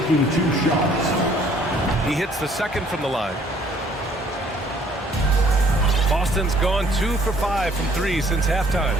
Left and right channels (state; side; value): normal; both; correlation 0.60